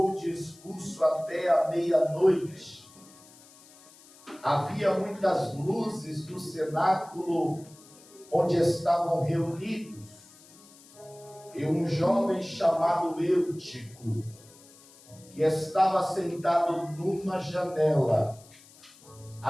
o discurso até a meia-noite. Havia muitas luzes no cenáculo onde estavam reunidos, e um jovem chamado Eutico, que estava sentado numa janela,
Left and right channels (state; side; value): noise; left; hiss, 24 dB below the sound